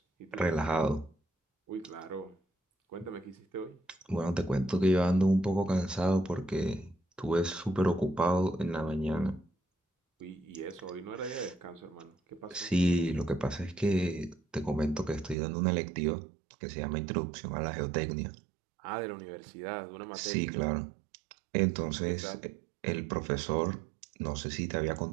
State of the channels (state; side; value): drops out; left; at 15.4 s